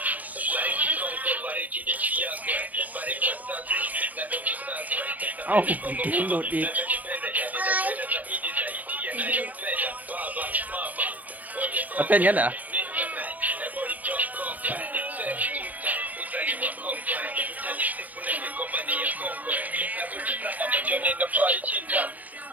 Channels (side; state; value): left; late; 0.078 ms